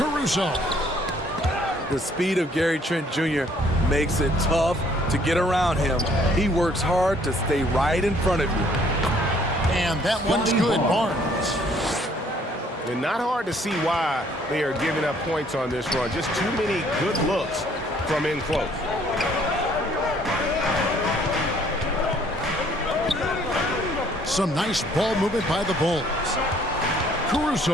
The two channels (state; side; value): normal; both; correlation 0.62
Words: The speed of Gary Trent Jr. makes it tough to get around him. He works hard to stay right in front of you. And that one's good, Barnes. And not hard to see why they are giving up points on this run. Just too many good looks from in close. Some nice ball movement by the Bulls.